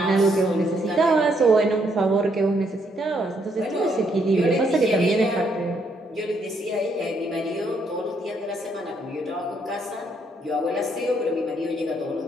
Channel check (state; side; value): normal; both; correlation 0.73